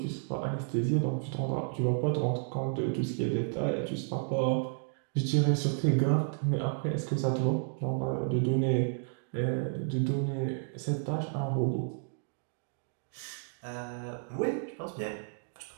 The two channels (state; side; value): silent; left; digital silence